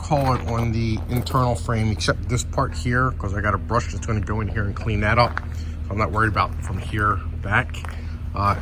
it on the internal frame, except this part here, because I got a brush that's gonna go in here and clean that up. So I'm not worried about from here back.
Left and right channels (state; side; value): identical; both; correlation 1.00